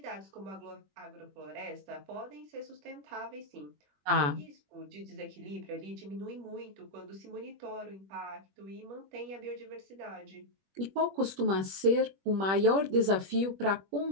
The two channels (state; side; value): late; left; 21 ms